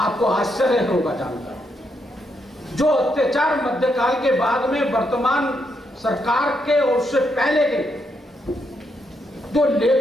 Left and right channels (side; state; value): both; normal; correlation 0.79